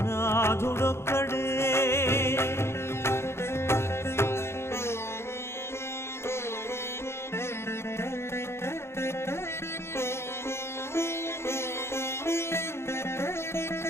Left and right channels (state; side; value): late; right; 0.12 ms